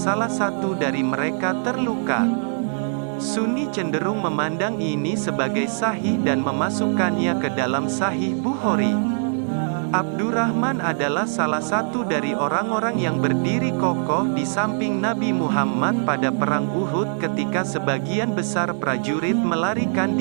satu dari mereka terluka. Sunni cenderung memandang ini sebagai sahih dan memasukkannya ke dalam Sahih Bukhari. Abdurrahman adalah salah satu dari orang-orang yang berdiri kokoh di samping Nabi Muhammad pada Perang Uhud ketika sebagian besar prajurit melarikan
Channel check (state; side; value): silent; left; digital silence